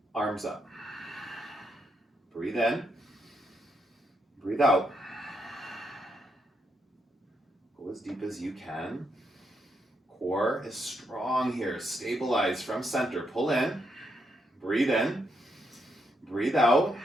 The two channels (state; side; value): normal; both; correlation 0.79